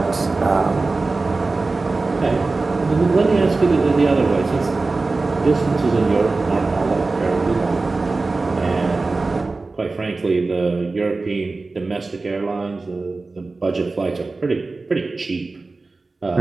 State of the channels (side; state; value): left; quieter; 3.6 dB